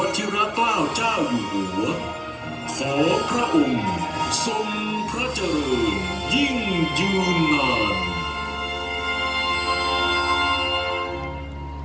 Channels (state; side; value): identical; both; correlation 1.00